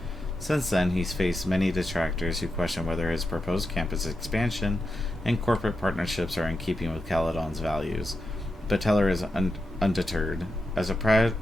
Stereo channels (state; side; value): normal; both; correlation 0.88